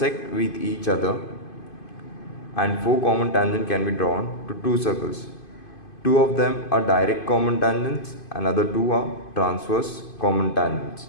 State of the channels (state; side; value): late; right; 2.5 ms